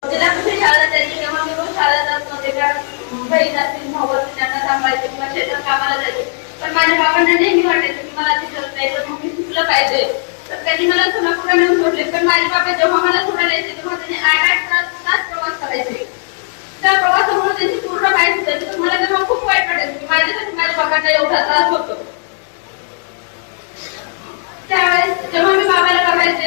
जिल्हा परिषद शाळा जायची तेव्हा मी रोज शाळेला जात नव्हते, कारण बहीण असतील भाऊ असतील त्यांना सांभाळायचे किंवा शेतात कामाला जायचे. पण माझ्या बाबांना नेहमी वाटायचं की मला तिथं नाही तर मग मी शिकलं पाहिजे. तर त्यांनी मला सोलापूरला नेऊन सोडले. पण माझे बाबा जेव्हा मला सोडायला यायचे तेव्हा त्यांनी 8-8 तास प्रवास करायचे. त्या प्रवासामुळे त्यांची पूर्ण पाय सुटायची. तर मला तेव्हा खूप वाईट वाटायचं की माझ्यासाठी माझ्या बाबांना एवढा त्रास होतो. त्यावेळेस जेव्हा मी बाबाला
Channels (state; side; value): silent; right; 56 dB below the other